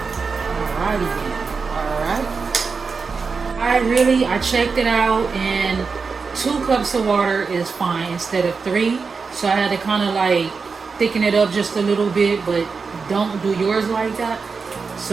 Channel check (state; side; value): quieter; left; 4.9 dB